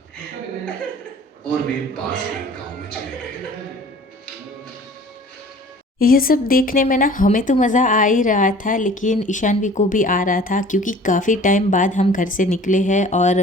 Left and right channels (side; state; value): both; normal; correlation 0.48